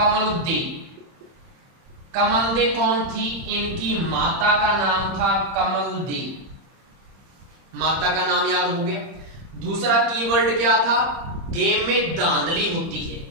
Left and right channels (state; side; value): late; left; 30 ms